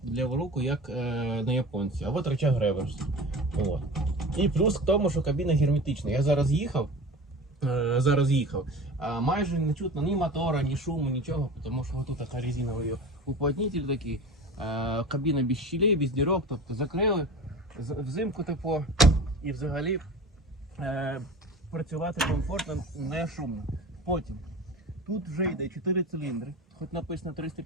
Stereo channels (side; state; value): both; normal; correlation 0.36